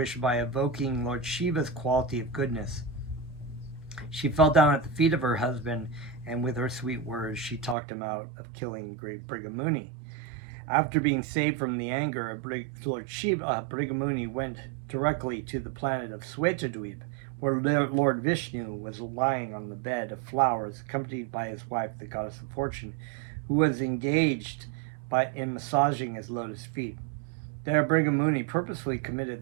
by evoking Lord Shiva's quality of goodness. She fell down at the feet of her husband, and with her sweet words, she talked him out of killing Brigamuni. After being saved from the anger of Lord Shiva, Brigamuni went directly to the planet of Swetadweep, where Lord Vishnu was lying on the bed of flowers, accompanied by his wife, the goddess of fortune, who was engaged in massaging his lotus feet. There, Brigamuni purposely committed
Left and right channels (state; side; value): drops out; left; at 7.8 s